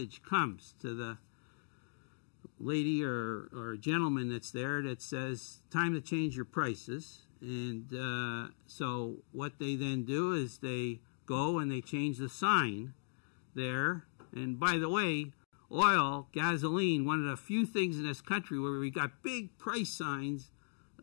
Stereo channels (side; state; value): right; silent; digital silence